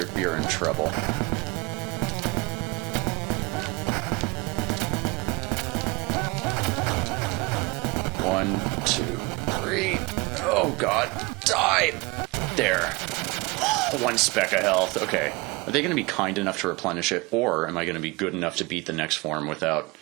in trouble. One, two, three. Oh god, die! There. One speck of health. Okay. Are they going to be kind enough to replenish it, or am I going to be good enough to beat the next form without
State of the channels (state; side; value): quieter; left; 24.6 dB